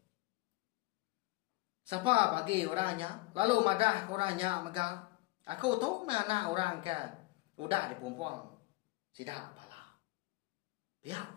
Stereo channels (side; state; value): right; quieter; 22.9 dB